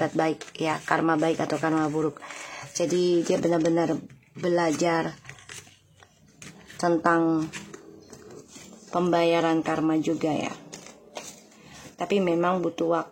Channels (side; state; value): both; identical; correlation 1.00